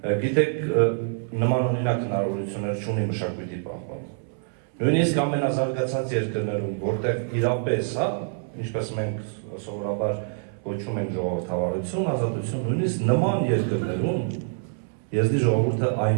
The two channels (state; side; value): silent; left; 61 dB below the other